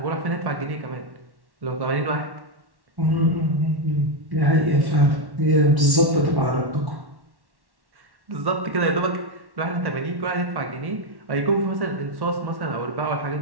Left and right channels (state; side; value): late; left; 1.1 ms